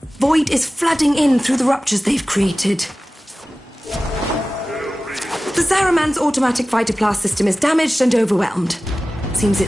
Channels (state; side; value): normal; both; correlation 0.96